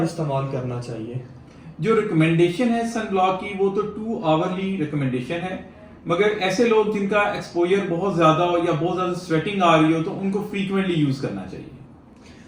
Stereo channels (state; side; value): identical; both; correlation 1.00